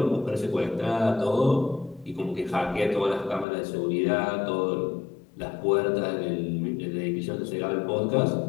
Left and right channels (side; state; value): right; drops out; at 3.5 s